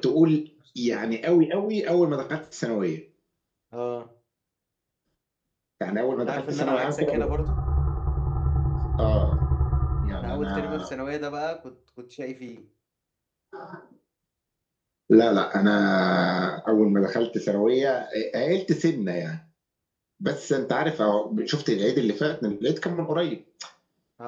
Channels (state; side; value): identical; both; correlation 1.00